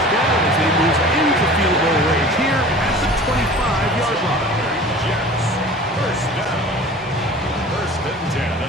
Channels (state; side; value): normal; both; correlation 0.42